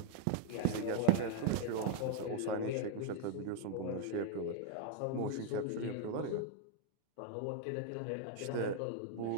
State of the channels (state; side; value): different; both; correlation 0.00